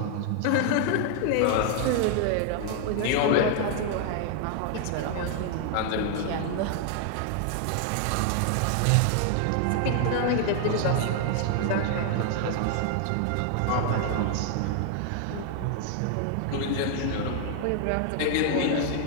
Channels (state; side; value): different; both; correlation 0.00